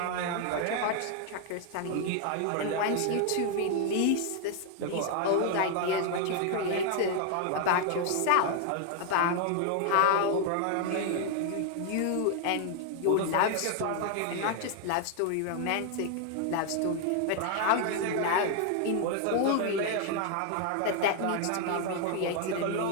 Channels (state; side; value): different; both; correlation 0.00